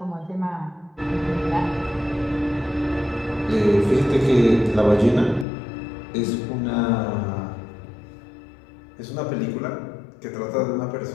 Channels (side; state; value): right; drops out; at 5.5 s